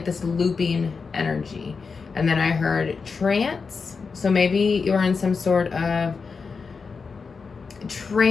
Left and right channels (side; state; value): right; quieter; 5.0 dB